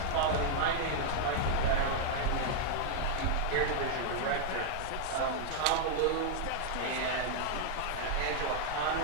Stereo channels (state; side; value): different; both; correlation 0.00